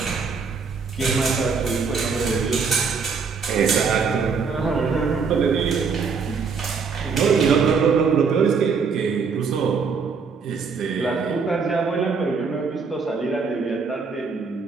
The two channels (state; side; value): quieter; left; 5.3 dB